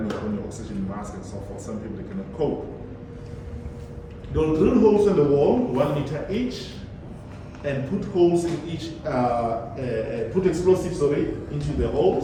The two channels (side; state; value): both; identical; correlation 1.00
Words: on your oxygen mask and so forth. Some people they cannot cope. They'll drill holes in the wall, 1 meter each, and put holes in each, put explosives into the